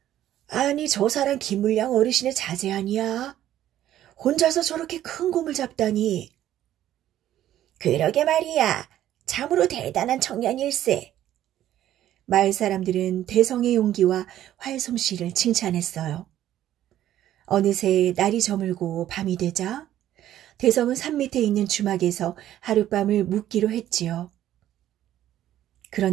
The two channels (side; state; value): left; quieter; 12.4 dB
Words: 아니, 저 사람 김물량 어르신의 자제 아니야? 혼자서 저렇게 큰 곰을 잡다니. 그러게 말이야. 참으로 대단한 청년일세. 마을 사람들은 대성의 용기와 활솜씨를 칭찬했어요. 어느새 날이 저물고 밤이 되자 대성은 산 밑에 있는 주막에서 하룻밤을 묵기로 했지요.